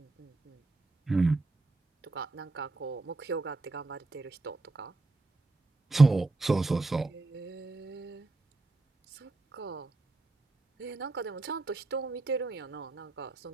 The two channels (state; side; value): quieter; left; 3.2 dB